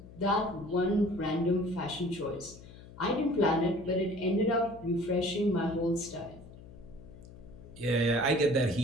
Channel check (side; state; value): left; noise; hum, 18 dB below the sound